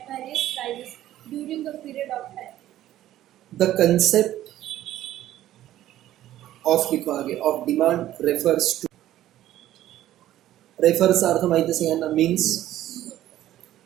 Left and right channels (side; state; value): left; quieter; 13.4 dB